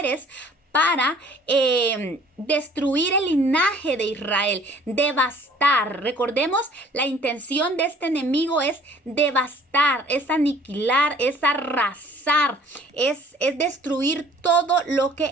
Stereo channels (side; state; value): both; normal; correlation 0.54